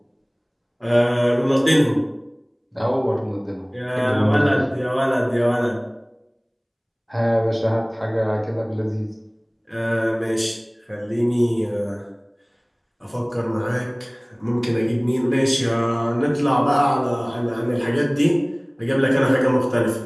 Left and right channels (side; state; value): both; identical; correlation 1.00